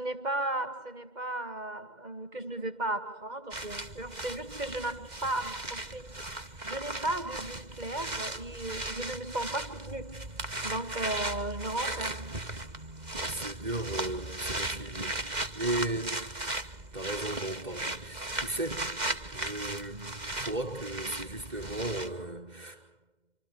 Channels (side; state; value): left; late; 2.1 ms